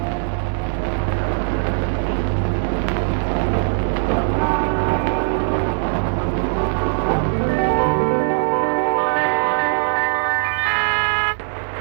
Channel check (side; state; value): left; silent; digital silence